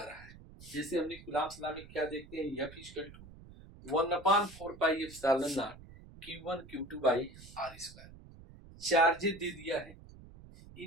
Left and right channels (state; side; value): noise; right; rumble, 18 dB below the sound